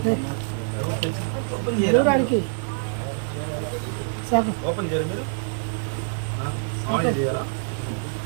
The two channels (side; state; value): left; silent; digital silence